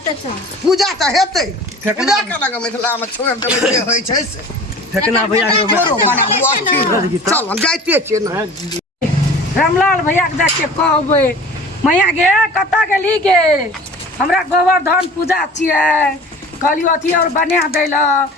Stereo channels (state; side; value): normal; both; correlation 0.42